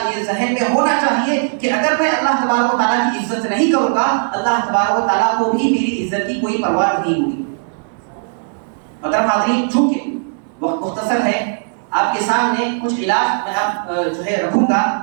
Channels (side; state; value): left; silent; 66 dB below the other